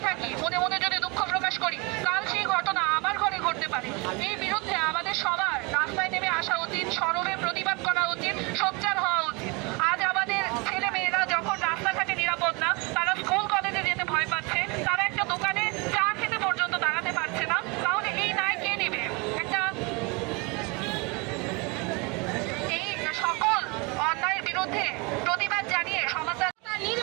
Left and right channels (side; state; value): left; quieter; 28.6 dB